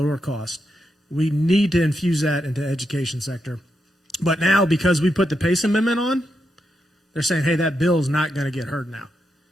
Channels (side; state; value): both; normal; correlation 0.84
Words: cost. We need to infuse that into the education sector. But now, because we put the PACE amendment on, they're saying, hey, that bill is not going to get heard now